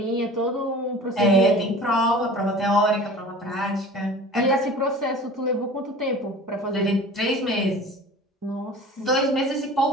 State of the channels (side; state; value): both; normal; correlation 0.40